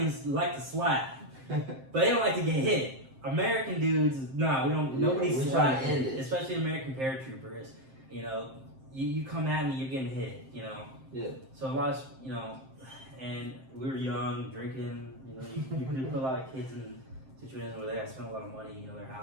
like to slap, but they don't like to get hit. American dudes, we don't. Nobody slaps, especially American paratroopers. You come at me, you're getting hit. Yeah. So a lot of and we were young, drinking. You put a lot of kids in situations where they have to spend a lot of money. Their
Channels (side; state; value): left; late; 7.6 ms